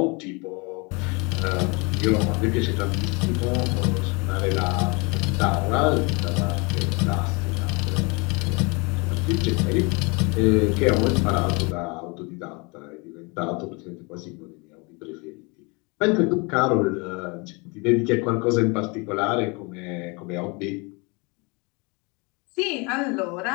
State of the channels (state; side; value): quieter; right; 29.4 dB